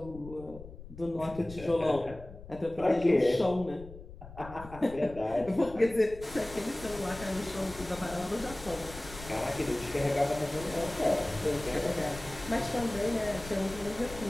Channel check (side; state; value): left; noise; rumble, 15 dB below the sound